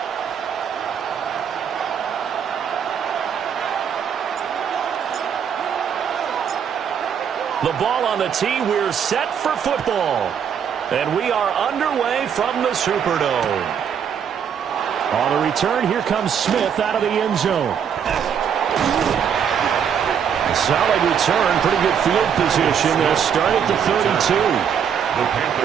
The ball on the tee, we're set for football. And we are underway from the Superdome. On the return, here comes Smith out of the end zone. Solid return, pretty good field position. They'll start at the 32. The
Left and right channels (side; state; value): left; quieter; 7.9 dB